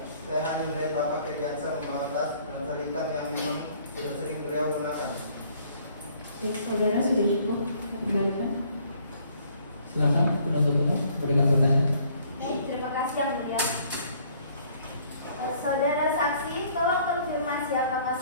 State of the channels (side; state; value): both; inverted; correlation -0.61